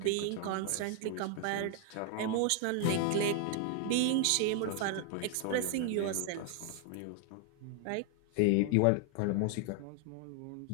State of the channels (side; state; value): both; different; correlation 0.00